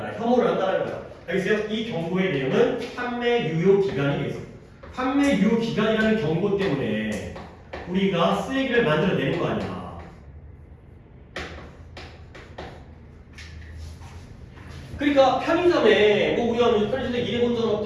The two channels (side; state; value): both; identical; correlation 1.00